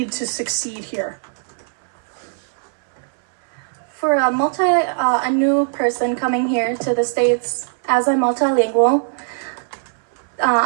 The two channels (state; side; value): silent; left; 62 dB below the other